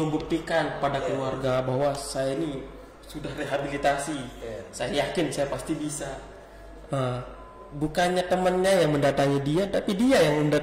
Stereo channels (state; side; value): identical; both; correlation 1.00